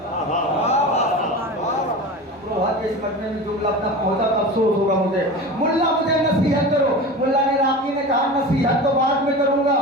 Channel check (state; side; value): normal; both; correlation 0.31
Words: इस मजमे में जुमला अपना पहुंचा तो अफसोस होगा मुझे। मुल्ला मुझे नसीहत करो। मुल्ला ने राकी ने कहा नसीहत तो बाद में करूंगा,